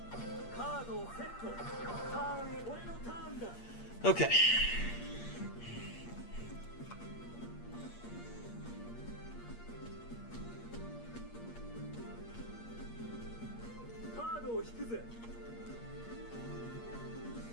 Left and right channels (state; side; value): late; right; 8.5 ms